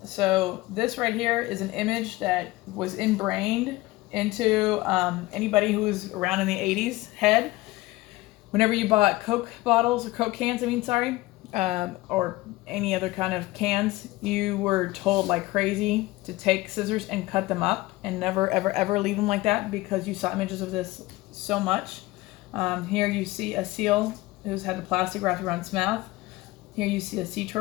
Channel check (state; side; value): quieter; right; 19.5 dB